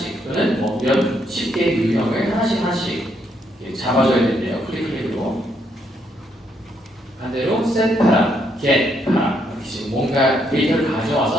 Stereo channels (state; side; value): normal; both; correlation 0.74